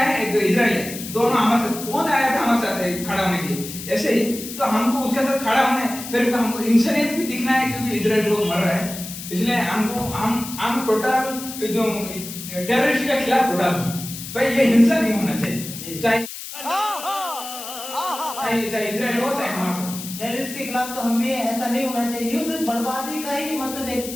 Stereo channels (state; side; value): noise; left; hiss, 10 dB below the sound